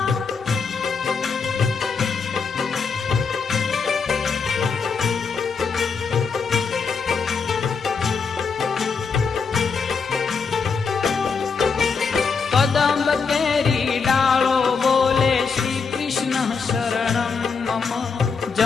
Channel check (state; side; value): quieter; right; 5.4 dB